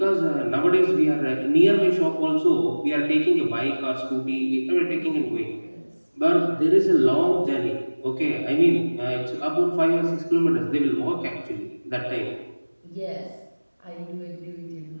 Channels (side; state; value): both; inverted; correlation -1.00